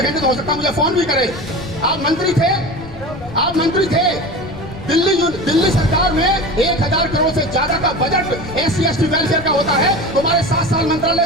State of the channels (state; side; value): noise; left; rumble, 17 dB below the sound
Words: तो हो सकता है मुझे फोन भी करे। आप मंत्री थे दिल्ली सरकार में 1000 करोड़ से ज्यादा का बजट SC/ST वेलफेयर का होता है। तुम्हारे 7 साल